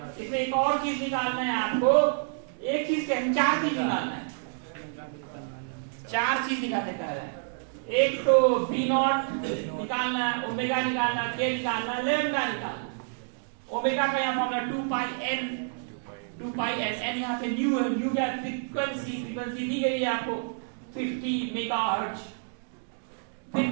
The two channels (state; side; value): silent; left; digital silence